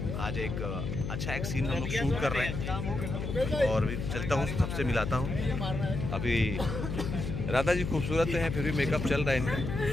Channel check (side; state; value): left; noise; hum, 4 dB below the sound